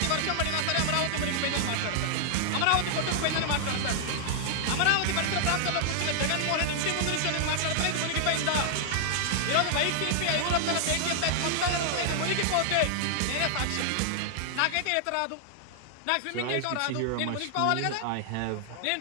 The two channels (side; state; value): both; different; correlation -0.01